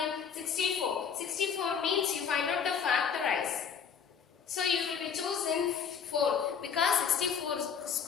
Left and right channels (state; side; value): quieter; right; 7.0 dB